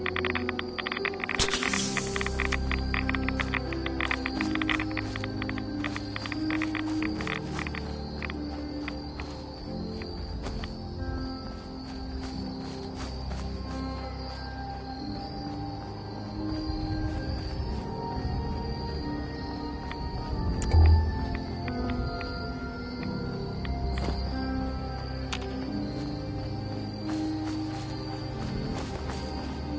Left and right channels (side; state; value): both; identical; correlation 1.00